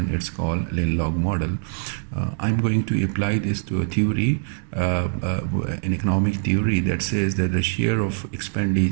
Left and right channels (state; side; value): silent; left; digital silence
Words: it's called Lin-Log model. I'm going to apply this to a theory, an economic theory that says that the share of